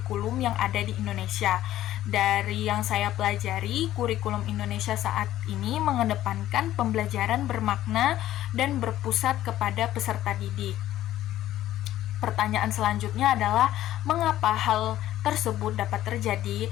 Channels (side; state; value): right; quieter; 13.5 dB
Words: yang ada di Indonesia. Dari yang saya pelajari, kurikulum Indonesia saat ini mengedepankan pembelajaran bermakna dan berpusat kepada peserta didik. Pertanyaan selanjutnya adalah mengapa hal tersebut dapat terjadi?